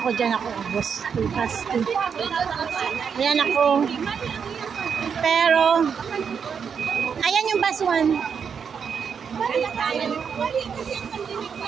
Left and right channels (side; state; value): left; quieter; 6.7 dB